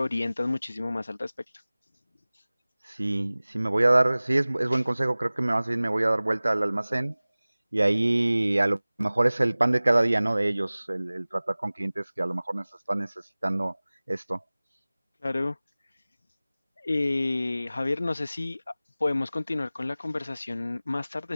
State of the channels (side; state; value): both; inverted; correlation -0.99